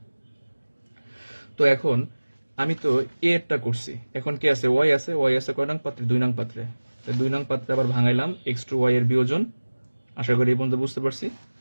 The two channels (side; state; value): both; inverted; correlation -1.00